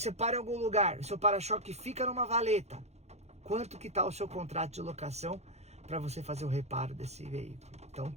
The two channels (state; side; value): late; left; 0.31 ms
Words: para em algum lugar, o seu para-choque fica numa valeta. Quanto que tá o seu contrato de locação para você fazer o reparo desse veículo? Então,